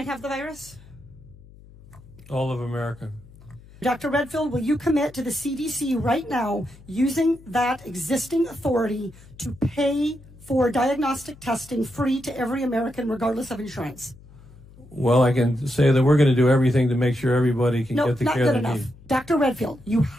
have the virus? All of America. Dr. Redfield, will you commit to the CDC right now using that existing authority to pay for diagnostic testing free to every American regardless of insurance? Well, I can say that we're going to do everything to make sure everybody can get the care they enough. need. Dr. Redfield, you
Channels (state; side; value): noise; left; hum, 22 dB below the sound